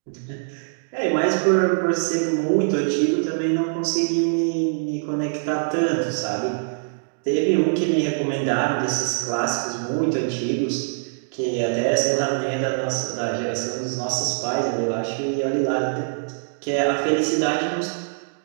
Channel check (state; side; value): silent; left; digital silence